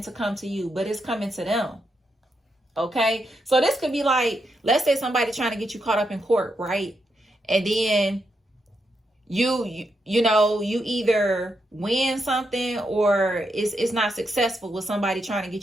to come to you, but it's coming to them. Okay, so this could be like, let's say somebody trying to get you caught up in court, right? And then you either win something or it's not successful with somebody trying to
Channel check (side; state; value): both; normal; correlation 0.82